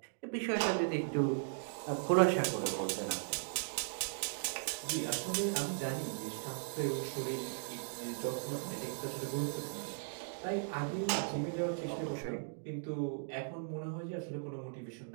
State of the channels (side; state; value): left; silent; digital silence